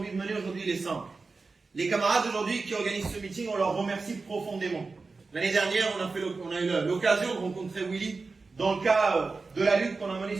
de mener aujourd'hui, il est simple. Les camarades aujourd'hui qui organisent ce meeting, on leur remercie profondément. L'année dernière, on a eu l'occasion de rencontrer Willy dans le cas de la lutte qu'on a menée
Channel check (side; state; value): left; quieter; 4.0 dB